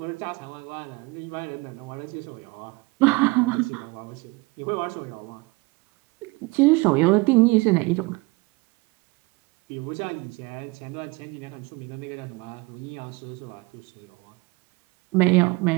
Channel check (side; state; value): left; quieter; 25.1 dB